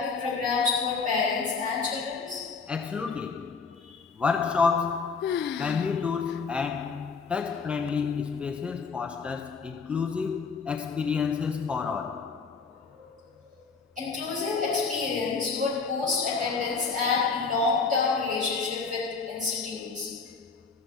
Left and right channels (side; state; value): right; quieter; 4.9 dB